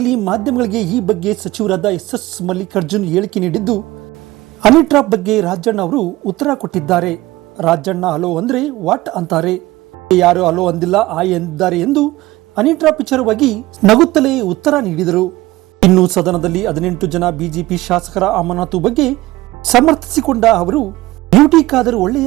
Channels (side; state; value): left; quieter; 18.2 dB